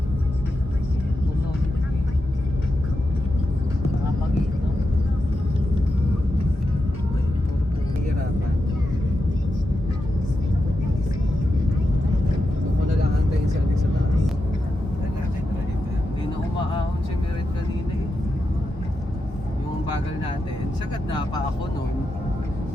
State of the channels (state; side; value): normal; both; correlation 0.88